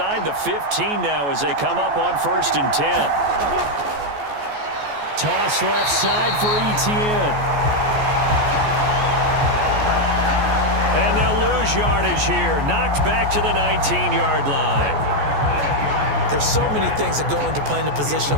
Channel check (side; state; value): left; late; 14 ms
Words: the 15 now as they come up on 1st and 10. Toss left side for Etienne. And they'll lose yardage here. Knocked back to the 19-yard line. There's so many things that go into playing the position